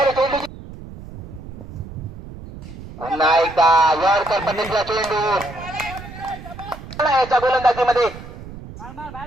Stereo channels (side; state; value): right; noise; rumble, 14 dB below the sound